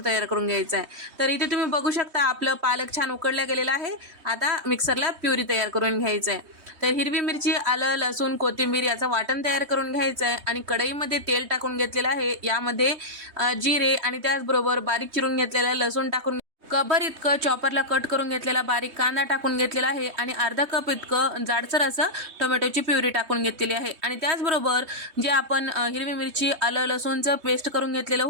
तयार करून घ्यायचं आहे. तर इथे तुम्ही बघू शकता आपलं पालक छान उकडला गेलेला आहे. आता मिक्सरला प्युरी तयार करून घ्यायचं आहे. तर हिरवी मिरची, आलं, लसूण, कोथिंबीर याचं वाटण तयार करून घ्यायचं आहे आणि कढईमध्ये तेल टाकून घेतलेलं आहे. यामध्ये जिरे आणि त्याचबरोबर बारीक चिरून घेतलेला लसूण टाकून कभर इतकं चॉपरला कट करून घेतलेला बारीक कांदा टाकून घेतलेला आहे आणि अर्धा कप इतकं जाडसर असं टोमॅटोची प्युरी टाकून घेतलेली आहे. आणि त्याचबरोबर जे आपण हिरवी मिरची, आलं, लसूणचं पेस्ट करून घेतलेलं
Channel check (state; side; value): late; left; 3.2 ms